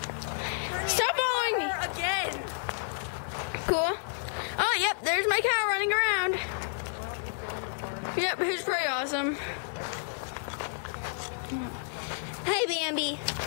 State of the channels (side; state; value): right; silent; 56 dB below the other